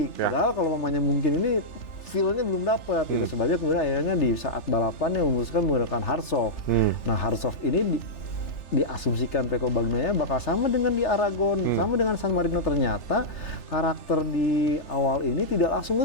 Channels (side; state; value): right; late; 3.4 ms